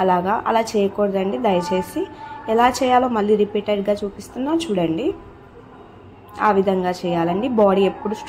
అలా చేయకూడదండి. దయచేసి ఎలా చేయాలో మళ్ళీ రిపీటెడ్గా చూపిస్తున్నా చూడండి. ఆ విధంగా చేయాలండి. బాడీ ఎప్పుడు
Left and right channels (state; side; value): identical; both; correlation 1.00